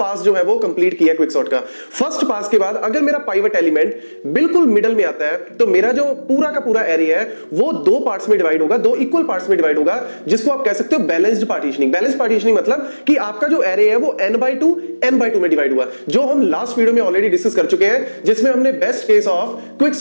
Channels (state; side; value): inverted; both; correlation -1.00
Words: जो है वो कंप्लीट किया क्विक सॉर्ट का। फर्स्ट पास के बाद अगर मेरा पाइवट एलिमेंट बिल्कुल मिडल में आता है तो मेरा जो पूरा का पूरा एरे है वो दो पार्ट्स में डिवाइड होगा, दो इक्वल पार्ट्स में डिवाइड होगा, जिसको आप कह सकते हो बैलेंस्ड पार्टीशनिंग। बैलेंस्ड पार्टीशनिंग मतलब कि आपका जो एरे है वो n/2 में डिवाइड हुआ, जो हम लास्ट वीडियो में ऑलरेडी डिस्कस कर चुके हैं, जिसमें हमने best case of quick